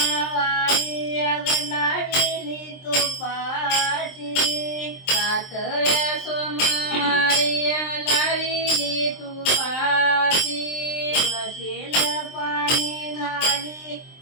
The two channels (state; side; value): late; right; 23 ms